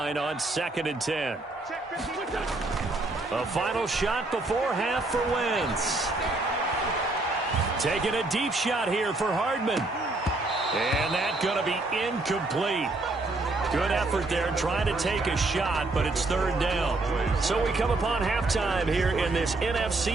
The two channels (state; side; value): quieter; left; 3.0 dB